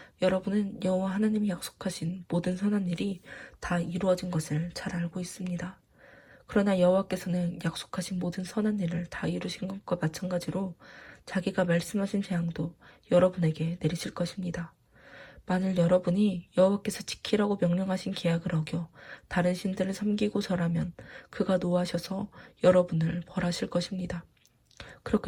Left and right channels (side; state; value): both; identical; correlation 1.00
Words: 여러분은 여호와 하나님이 약속하신 모든 선한 일이 다 이루어진 것을 잘 알고 있습니다. 그러나 여호와께서는 약속하신 모든 선한 일을 다 이루신 것과 마찬가지로 자기가 말씀하신 재앙도 여러분에게 내리실 것입니다. 만일 여러분이 여호와께서 지키라고 명령하신 계약을 어겨 다른 신들을 섬기고 절하면 그가 노하셔서 여러분을 벌하실 것입니다.